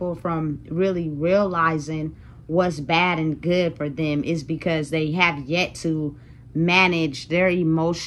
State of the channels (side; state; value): both; identical; correlation 1.00